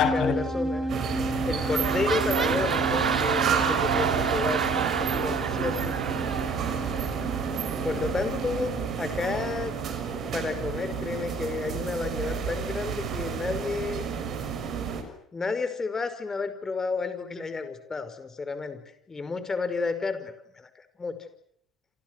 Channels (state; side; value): normal; both; correlation 0.58